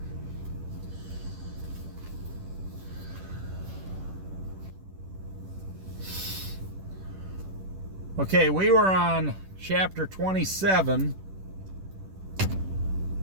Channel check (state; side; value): late; left; 10 ms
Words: Okay, we were on chapter 27.